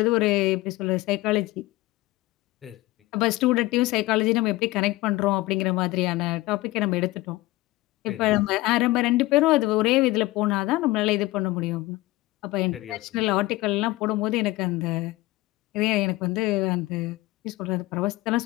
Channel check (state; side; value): quieter; right; 19.3 dB